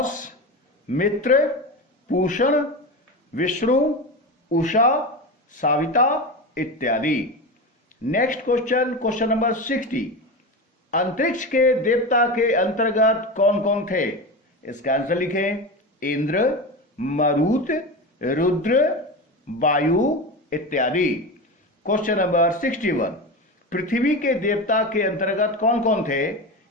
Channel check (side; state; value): both; normal; correlation 0.23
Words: मित्र, पूषण, विष्णु, उषा, साविता इत्यादि। नेक्स्ट क्वेश्चन, क्वेश्चन नंबर 60, अंतरिक्ष के देवता के अंतर्गत कौन कौन थे? इसका आंसर लिखें इंद्र, मरुत, रुद्र, वायु इत्यादि। क्वेश्चन नंबर 61, पृथ्वी के देवता के अंतर्गत कौन कौन थे?